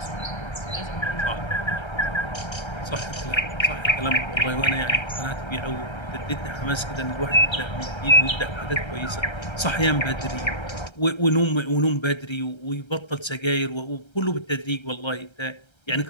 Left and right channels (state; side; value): late; right; 1.3 ms